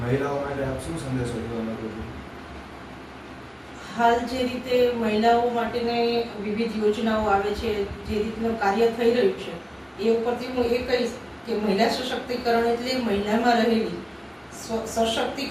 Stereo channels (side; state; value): both; identical; correlation 1.00